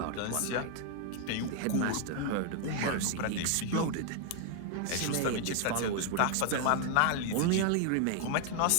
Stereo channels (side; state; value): both; different; correlation 0.00